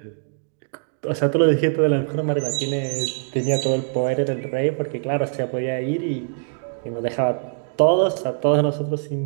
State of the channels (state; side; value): silent; left; digital silence